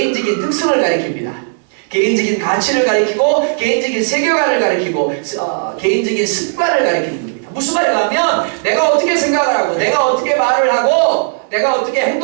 특성을 가리킵니다. 개인적인 가치를 가리키고 개인적인 세계관을 가리키고 개인적인 습관을 가리키는 겁니다. 무슨 말인가 하면 내가 어떻게 생각을 하고 내가 어떻게 말을 하고 내가 어떻게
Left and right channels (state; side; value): silent; left; 69 dB below the other